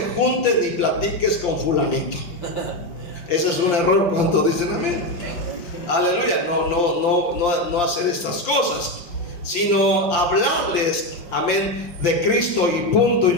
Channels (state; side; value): late; right; 5.7 ms